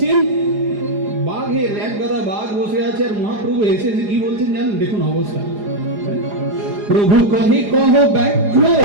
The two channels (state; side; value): late; left; 4.9 ms